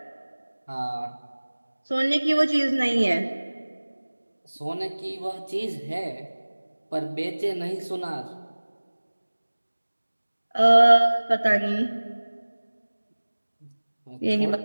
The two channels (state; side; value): inverted; both; correlation -1.00